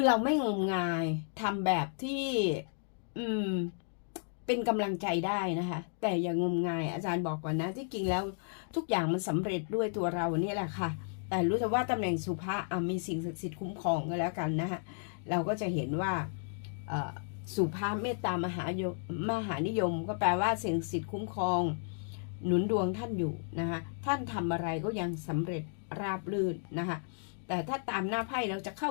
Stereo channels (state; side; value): silent; right; digital silence